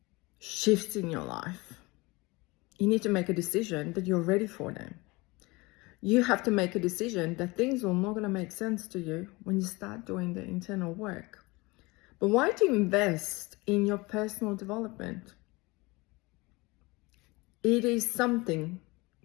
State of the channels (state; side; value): quieter; right; 23.8 dB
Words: shifts in your life, you need to make a decision that you're ready for them. You have to make a decision that things are not going to make sense to you when you start doing the internal work. But why do you invest in your personal development? It is something